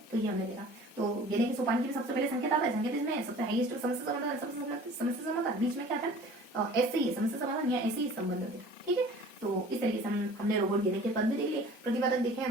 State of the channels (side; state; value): both; normal; correlation 0.46